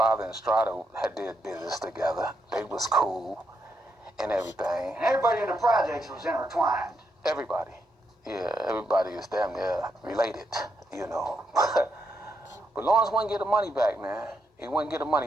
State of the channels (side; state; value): both; normal; correlation 0.80